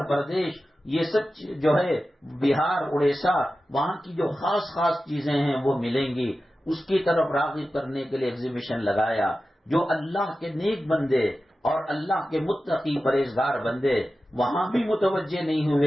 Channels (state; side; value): normal; both; correlation 0.93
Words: پردیش، یہ سب جو ہے بہار اڑیسہ، وہاں کی جو خاص خاص چیزیں ہیں وہ ملیں گی. اس کی طرف راغب کرنے کے لیے ایگزیبیشن لگایا. جو اللہ کے نیک بندے اور اللہ کے متقی پرہیزگار بندے وہاں بھی متوجہ نہیں